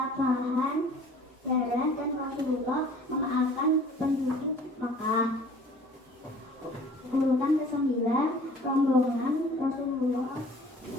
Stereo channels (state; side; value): normal; both; correlation 0.50